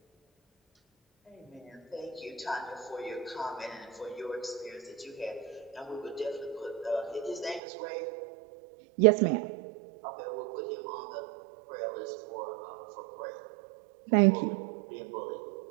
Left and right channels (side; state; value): left; drops out; at 7.6 s